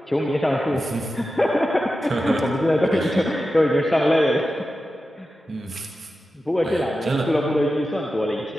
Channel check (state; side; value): normal; both; correlation 0.92